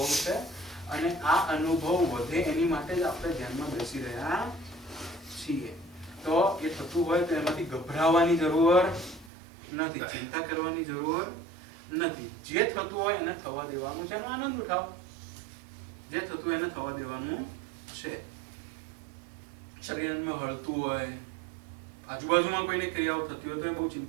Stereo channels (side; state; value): left; drops out; at 9.3 s